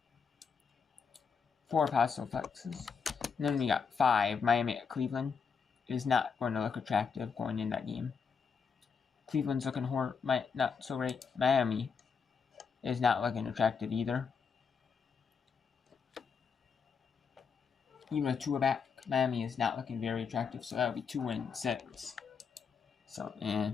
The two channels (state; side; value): quieter; right; 6.0 dB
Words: 4 possible flexes. And then we got 5. Miami at Cleveland is not going to look attractive going in that game. Cleveland's looking not so great. Miami is not looking attractive either. Even a 2 back, Miami is not looking very attractive, so that would be 2 and 6. So,